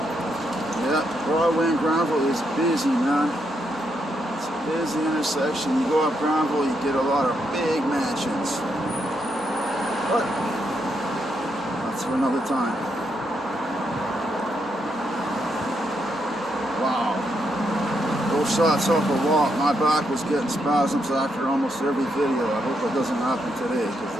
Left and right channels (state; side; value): normal; both; correlation 0.79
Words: Yeah, Broadway and Granville is busy, man. It's a busy intersection. You go up Granville, you get a lot of big mansions. But that's for another time. Wow. Those shots off a walk, my back was getting spasms after almost every video. I hope it doesn't happen today because